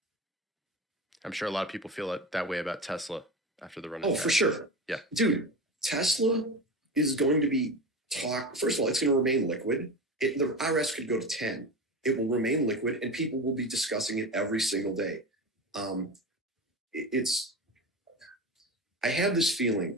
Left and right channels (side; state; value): both; normal; correlation 0.26